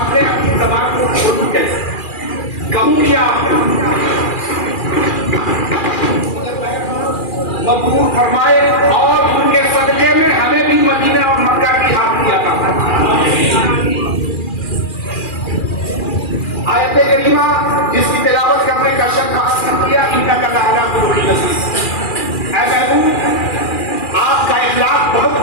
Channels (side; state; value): right; late; 2.4 ms